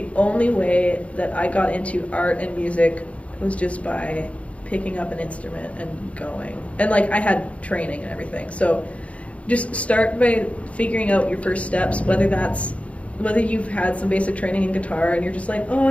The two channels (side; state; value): right; late; 0.064 ms